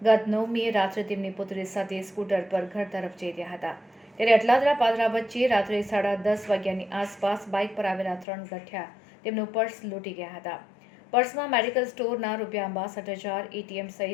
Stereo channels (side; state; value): right; drops out; at 8.2 s